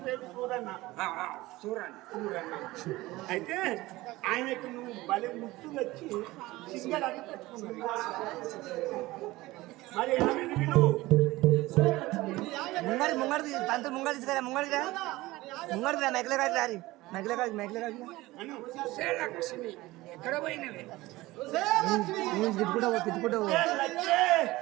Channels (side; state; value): left; quieter; 19.1 dB